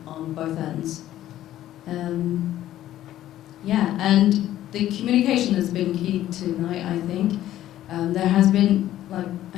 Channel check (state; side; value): quieter; right; 13.1 dB